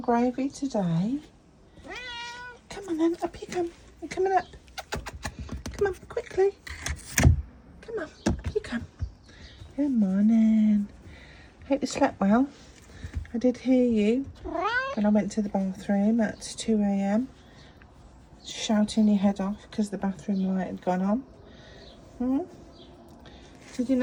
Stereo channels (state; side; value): identical; both; correlation 1.00